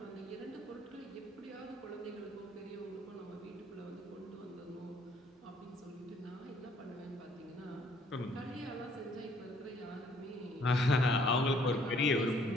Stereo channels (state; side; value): normal; both; correlation 0.62